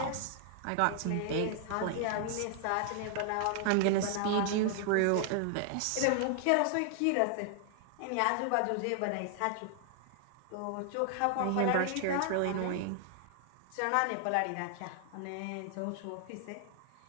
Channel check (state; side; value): different; both; correlation 0.00